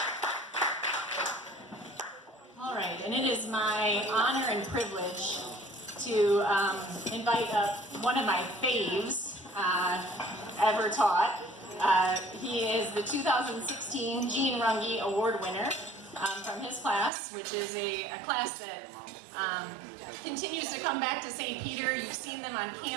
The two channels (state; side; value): drops out; left; at 17.1 s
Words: All right, and it is my honor and privilege to invite up one of my faves ever taught. He is the 2016 Gene Runge Award winner from his class, which is a class that continues to come back to St. Peter. You've seen them on